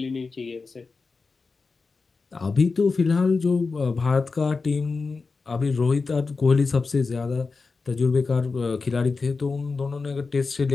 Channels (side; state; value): right; quieter; 4.3 dB